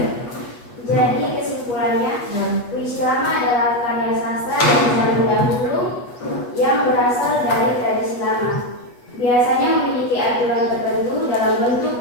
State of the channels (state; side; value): late; right; 8.3 ms